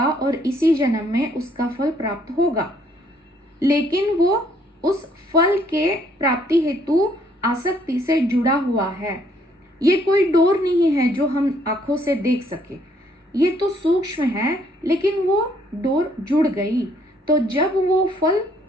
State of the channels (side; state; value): both; normal; correlation 0.66